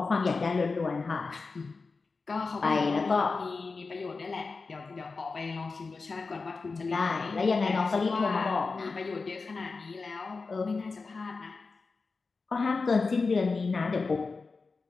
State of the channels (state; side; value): quieter; right; 4.2 dB